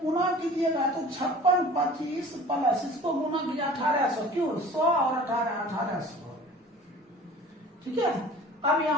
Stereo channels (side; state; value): both; normal; correlation 0.43